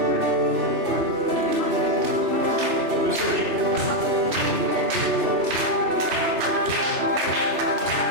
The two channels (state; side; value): late; left; 3.4 ms